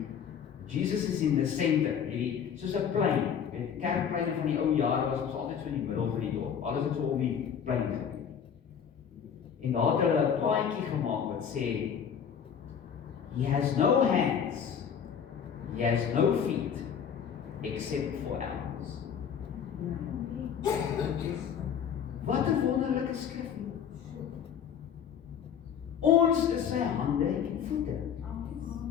Jesus is in the center, hierdie, soos 'n plein, weet, kerkpleine van die ou jare was ons altyd so in die middel van die dorp, alles het so om die plein gebeur. En daar het hulle 'n plaatjie gemaak wat sê, He has no hands, He has no feet, except for ours. Wat 'n wonderlike skrif. Ons is sy hande en voete.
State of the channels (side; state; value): right; quieter; 7.8 dB